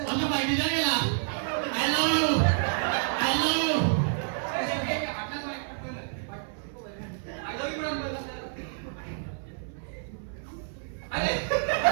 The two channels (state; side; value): silent; left; 59 dB below the other